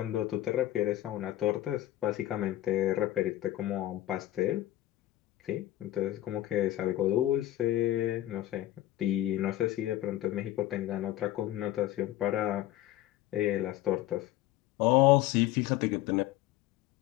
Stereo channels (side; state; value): right; quieter; 14.4 dB